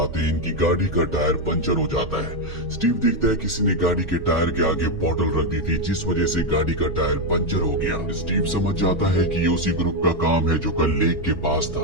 हैं इनकी गाड़ी का टायर पंचर हो जाता है। स्टीव देखता है किसी ने गाड़ी के टायर के आगे बोतल रख दी थी जिस वजह से गाड़ी का टायर पंचर हो गया। स्टीव समझ जाता है कि ये उसी ग्रुप का काम है जो कल लेक के पास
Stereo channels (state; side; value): normal; both; correlation 0.04